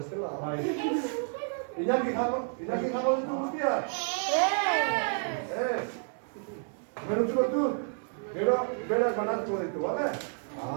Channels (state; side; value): silent; left; 57 dB below the other